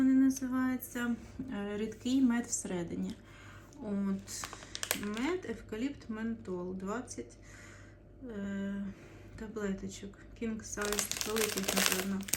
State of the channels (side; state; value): both; identical; correlation 1.00